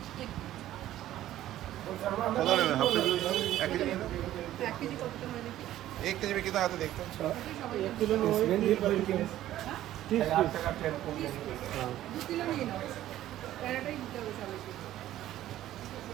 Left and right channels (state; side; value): quieter; left; 13.5 dB